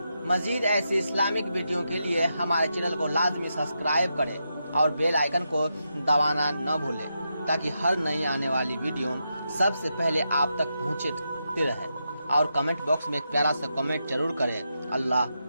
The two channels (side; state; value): both; inverted; correlation -0.85